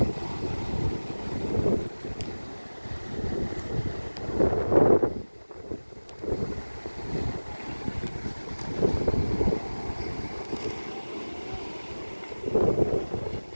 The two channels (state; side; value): inverted; both; correlation -1.00